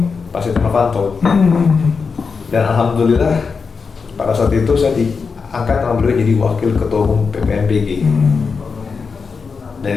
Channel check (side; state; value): right; quieter; 5.2 dB